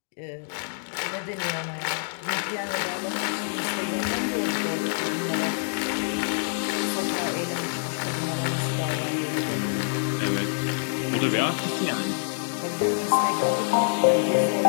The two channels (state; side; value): silent; right; digital silence